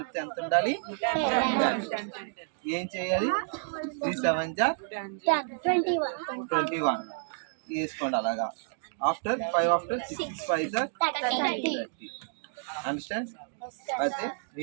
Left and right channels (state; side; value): silent; left; digital silence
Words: ఎంత ఉండాలి, ఏం చేయాలి 3 7 21 వేసుకోండి అలాగా. After 5 after 6 5 30. అండర్స్టాండ్. అయితే